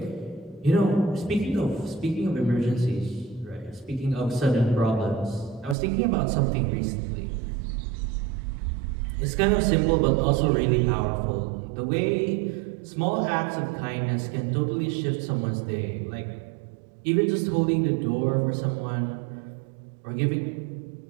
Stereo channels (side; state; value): left; drops out; at 5.8 s